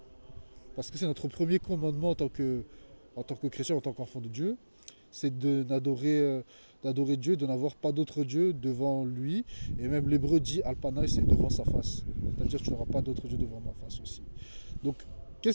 Parce que c'est notre premier commandement en tant que chrétien, en tant qu'enfant de Dieu, c'est d'adorer Dieu, de n'avoir pas d'autre Dieu devant lui. Et même l'hébreu dit Alpanaï, c'est devant sa face. C'est-à-dire que tu n'auras pas d'autre Dieu devant ma face aussi. Donc,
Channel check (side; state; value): both; inverted; correlation -1.00